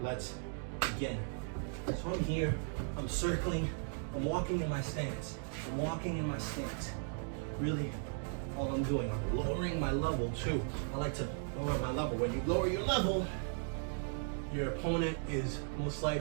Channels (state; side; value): silent; left; 53 dB below the other